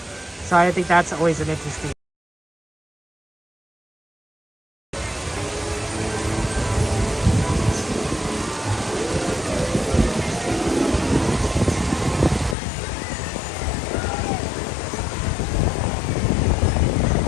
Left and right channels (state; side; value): drops out; right; at 12.6 s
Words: So I think that's always an interesting.